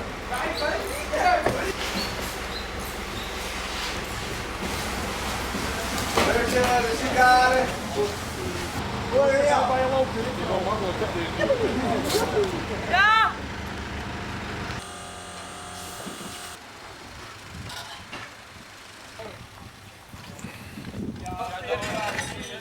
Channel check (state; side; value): identical; both; correlation 1.00